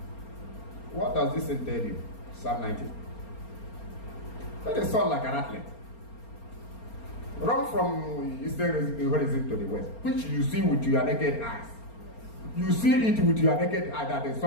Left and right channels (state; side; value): late; right; 4.3 ms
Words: does this tell you? Psalm 19. Let the sun like an athlete. Run from eastern horizon to the west, which you see with your naked eyes. You see it with your naked eye that the